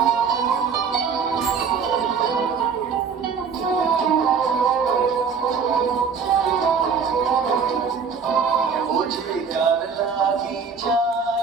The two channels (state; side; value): quieter; left; 6.0 dB